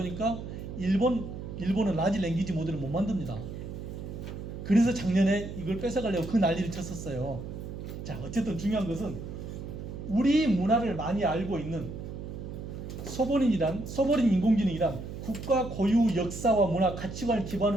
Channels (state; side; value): noise; right; hum, 8 dB below the sound